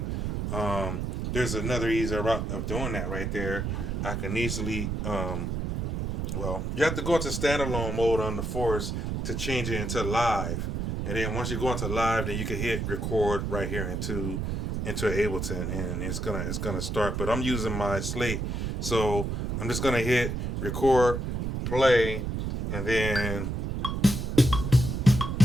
there's another easier route of doing that right there. I can easily, well, you have to go into standalone mode on the Force to change it into live. And then once you go into live, then you can hit record right here into Ableton, and it's gonna start. But I'm using my slate, so I'm just gonna hit record, play, and then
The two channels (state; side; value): noise; right; rumble, 2 dB below the sound